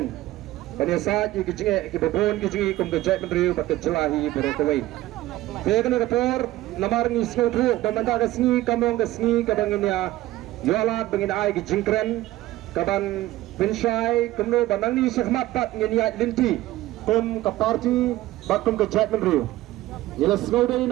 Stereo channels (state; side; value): quieter; left; 16.3 dB